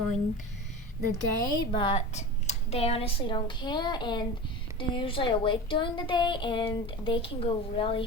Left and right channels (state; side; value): normal; both; correlation 0.31